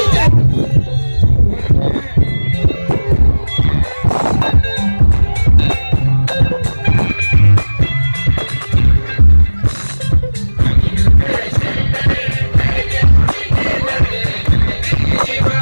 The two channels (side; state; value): both; inverted; correlation -1.00